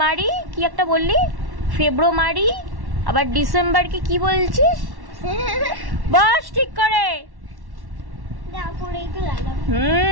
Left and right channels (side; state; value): left; late; 1.1 ms